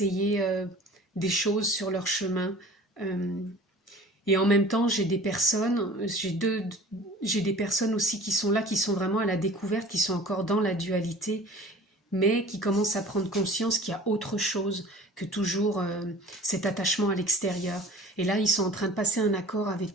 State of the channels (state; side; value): normal; both; correlation 0.44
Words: des choses sur leur chemin. Euh, et en même temps, j'ai des personnes aussi qui sont là, qui sont vraiment à la découverte, qui sont encore dans la dualité, mais qui commencent à prendre conscience qu'il y a autre chose que toujours cet attachement à l'extérieur. Et là, ils sont en train de passer un accord